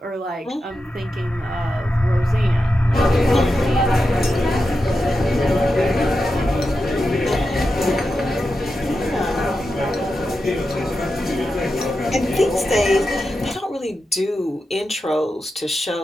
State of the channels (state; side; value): normal; both; correlation 0.89